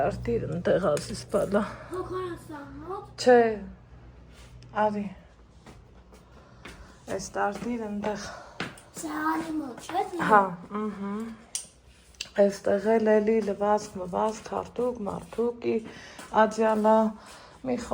ընտեղ ասիս բալա, չէ, արի, այս տարտիր ընտեղ, Հա, այստեղ էլի լվացք, հարթուկ, մարդուկի, աջյալա, մի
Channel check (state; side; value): identical; both; correlation 1.00